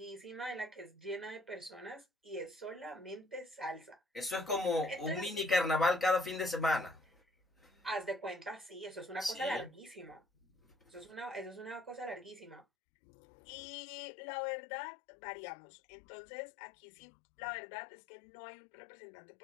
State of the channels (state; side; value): drops out; right; at 12.7 s